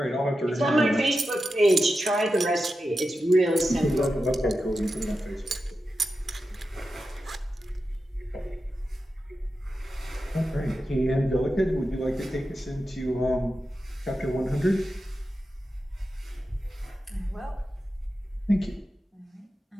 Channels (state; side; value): normal; both; correlation 0.91